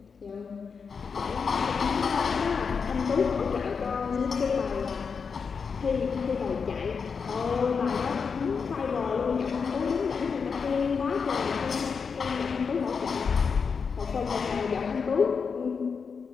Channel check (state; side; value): quieter; right; 5.7 dB